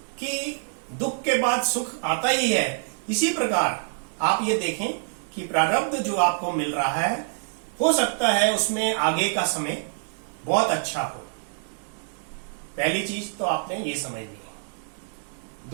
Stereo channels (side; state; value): left; silent; digital silence